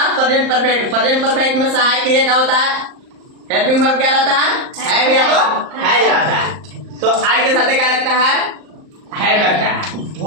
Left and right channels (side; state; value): left; late; 38 ms